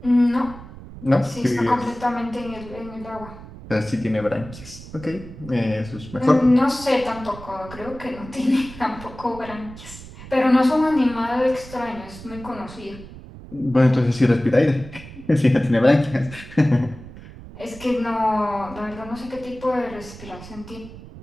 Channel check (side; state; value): right; noise; rumble, 16 dB below the sound